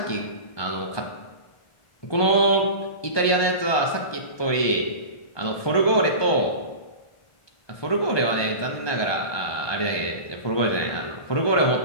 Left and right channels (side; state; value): right; late; 1.2 ms